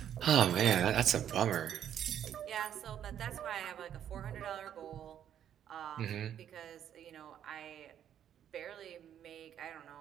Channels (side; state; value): left; quieter; 9.9 dB